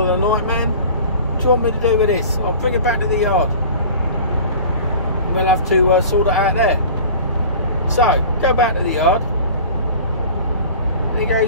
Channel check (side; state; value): both; inverted; correlation -0.41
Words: the night man. What do you want me to do with this? I'll bring it back to the yard and we'll have to sort it out there. So go back to the yard and he